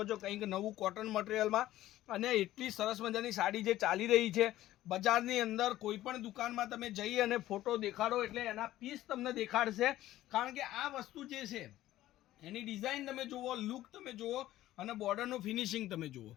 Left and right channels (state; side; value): quieter; right; 14.6 dB